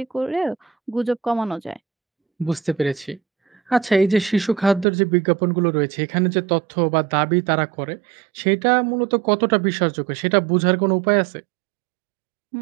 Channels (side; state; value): left; drops out; at 4.9 s